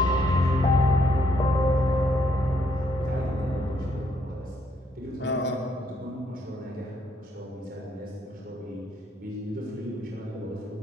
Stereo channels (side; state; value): both; normal; correlation 0.71